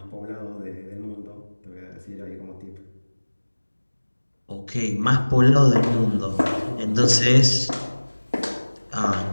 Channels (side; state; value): both; inverted; correlation -1.00